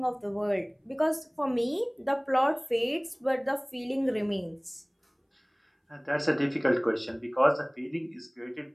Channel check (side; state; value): both; identical; correlation 1.00